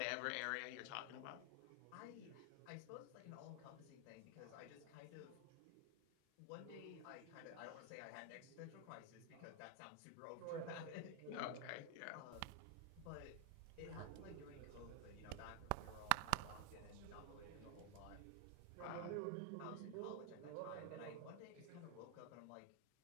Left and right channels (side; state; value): both; different; correlation 0.00